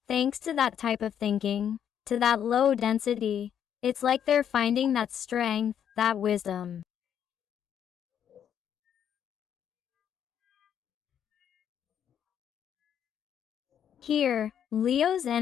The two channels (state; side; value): quieter; right; 9.1 dB